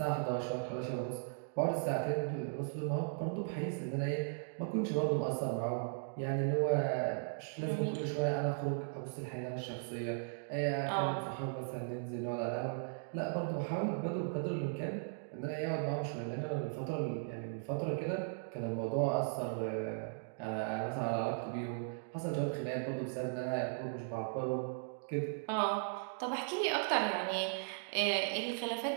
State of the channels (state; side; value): silent; left; digital silence